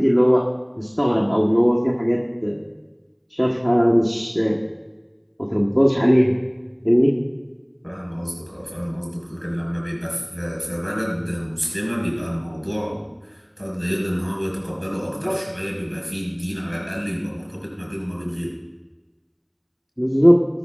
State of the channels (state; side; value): identical; both; correlation 1.00